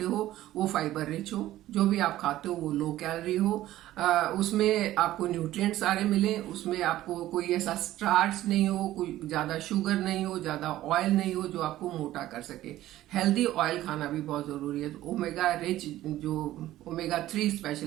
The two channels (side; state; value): left; quieter; 14.6 dB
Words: हो वो फाइबर रिच हो, जो भी आप खाते हो वो लो कैलोरी हो, उसमें आपको न्यूट्रिएंट्स सारे मिले, उसमें आपको कोई ऐसा स्टार्च नहीं हो, कोई ज्यादा शुगर नहीं हो, ज्यादा ऑयल नहीं हो जो आपको मोटा कर सके। हेल्दी ऑयल खाना भी बहुत जरूरी है। तो ओमेगा रिच, जो ओमेगा 3